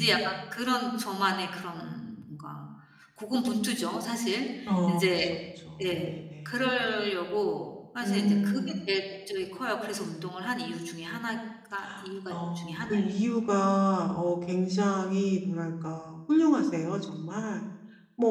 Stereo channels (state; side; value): identical; both; correlation 1.00